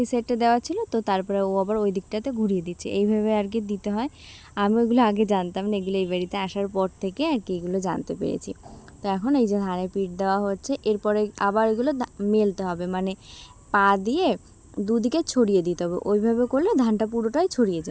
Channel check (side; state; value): both; identical; correlation 1.00